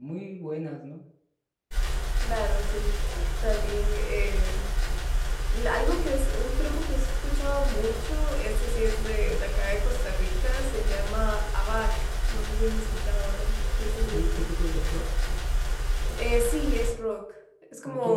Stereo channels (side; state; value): both; identical; correlation 1.00